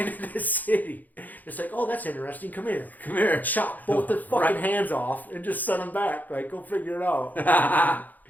the city. It's like, oh, that's interesting. Come here. Chop both their fucking hands off and just send them back. Like, go figure it out.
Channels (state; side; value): late; right; 0.083 ms